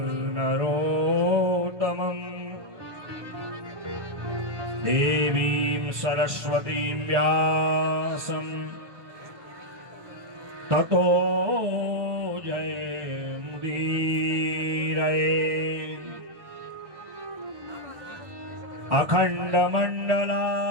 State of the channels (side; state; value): left; late; 1.2 ms